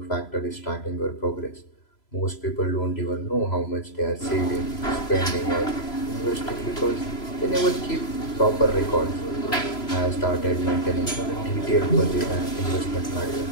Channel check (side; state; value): right; late; 3.0 ms